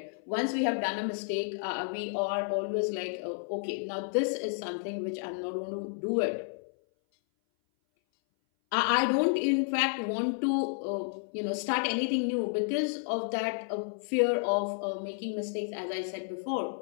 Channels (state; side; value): silent; right; 57 dB below the other